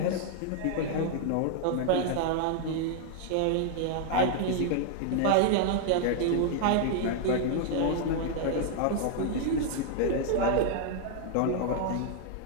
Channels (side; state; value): both; different; correlation 0.00